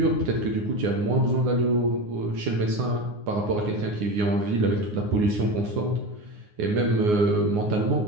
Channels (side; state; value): left; late; 9.7 ms